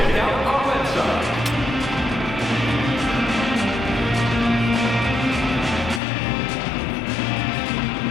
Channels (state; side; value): drops out; right; at 6.0 s